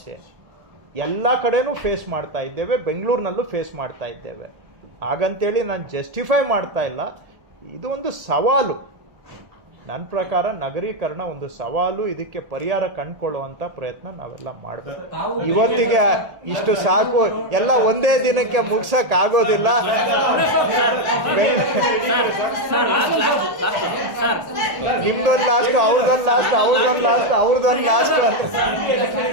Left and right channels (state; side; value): late; left; 1.8 ms